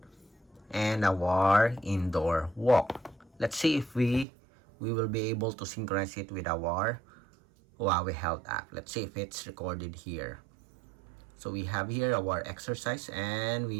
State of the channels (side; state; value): left; drops out; at 4.2 s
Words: and our indoor walk. Let's see if we will be able to synchronize it with our Huawei Health app. Let's see if it's recorded here. So we have here our exercise, and